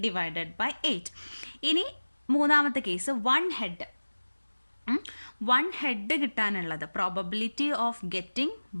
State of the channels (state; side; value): inverted; both; correlation -1.00